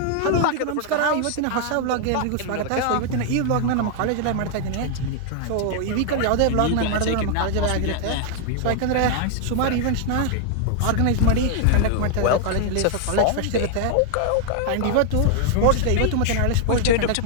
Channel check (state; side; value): different; both; correlation 0.00